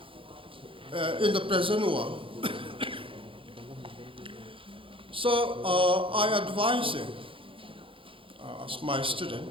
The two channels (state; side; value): late; left; 0.25 ms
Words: in the present world. So I advise you, as my student,